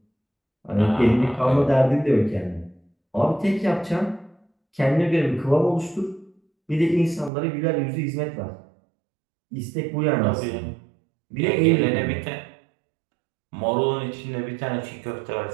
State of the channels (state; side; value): drops out; left; at 7.3 s